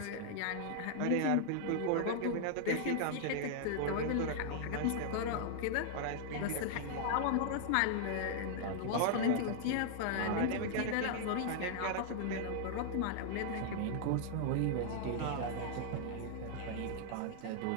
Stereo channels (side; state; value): both; different; correlation -0.01